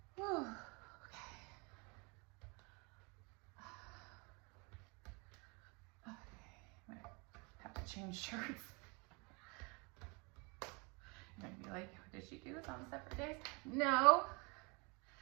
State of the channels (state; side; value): quieter; left; 30.4 dB